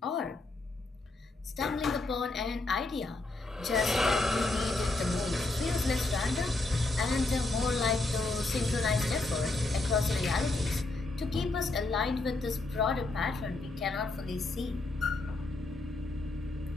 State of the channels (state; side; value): quieter; right; 3.1 dB